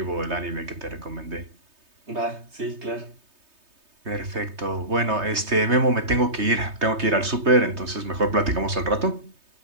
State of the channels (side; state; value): left; late; 3.2 ms